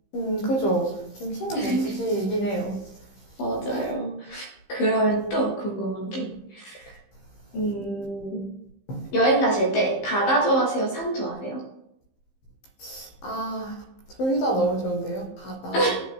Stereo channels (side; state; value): right; late; 15 ms